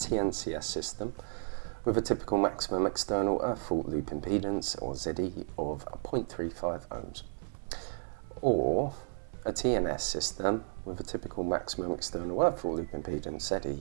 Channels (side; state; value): left; silent; 56 dB below the other